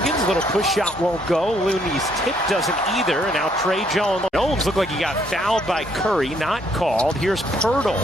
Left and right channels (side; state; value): both; normal; correlation 0.69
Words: little push shot won't go. Looney's tip doesn't either, and now Trey Jones. Jones looked like he got fouled by Curry, not called. Here's